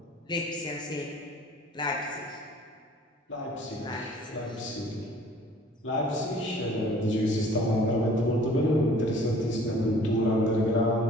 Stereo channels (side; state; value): both; normal; correlation 0.52